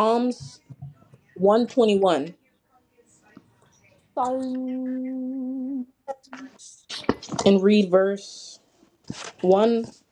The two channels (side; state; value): both; identical; correlation 1.00